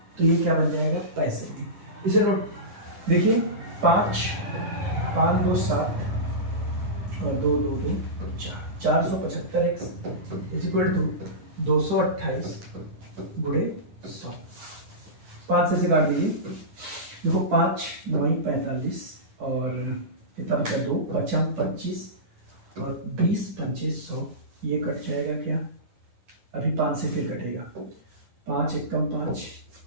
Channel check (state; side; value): late; left; 10 ms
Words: तो ये क्या बन जाएगा? पैसे में। इसे नोट देखिए, 5 5 2 7 और 2 2 2 4, 475x इज इक्वल टू 228 गुणे 100। 5 से काट दीजिए, देखो 5 9 45 और कितना बचा? 2 5 25 और 20 पंचे 100, ये कट जाएगा क्या? अभी 5 से फिर कटेगा, 5 एकम 5